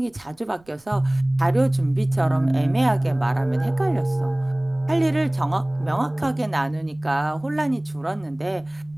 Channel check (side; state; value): right; noise; rumble, 30 dB below the sound